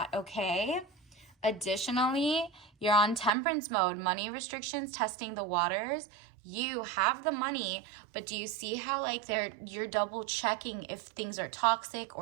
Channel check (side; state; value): left; drops out; at 3.3 s